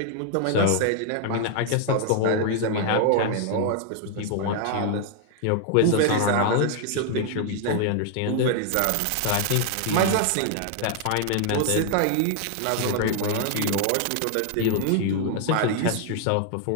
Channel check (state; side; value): different; both; correlation 0.00